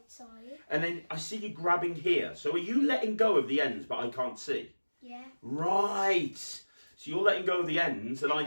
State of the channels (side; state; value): both; inverted; correlation -1.00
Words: side. And then I see you grabbing here. So are you letting go of the ends, but I can't see? Yeah. Right. So you're letting go of the ends and I